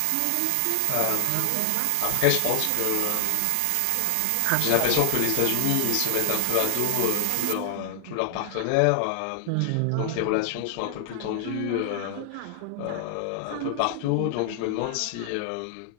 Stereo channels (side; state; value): both; different; correlation 0.00